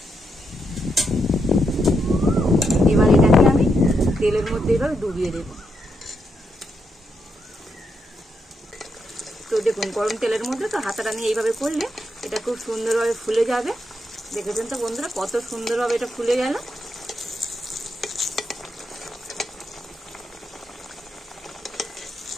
এবার এটাকে আমি তেলের মধ্যে এভাবে ডুবিয়ে দেব। তো দেখুন গরম তেলের মধ্যে তো হাতাটা নিয়ে এইভাবে করলে এটা খুব সুন্দরভাবে ফুলে যাবে। দেখেছেন তো বন্ধুরা কত সুন্দরভাবে এটা ফুলে গেল।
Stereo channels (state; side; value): normal; both; correlation 0.81